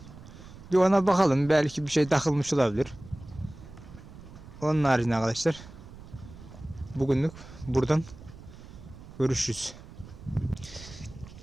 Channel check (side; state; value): right; noise; rumble, 17 dB below the sound